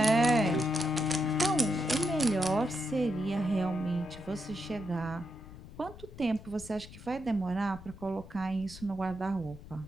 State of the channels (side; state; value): left; noise; rumble, 17 dB below the sound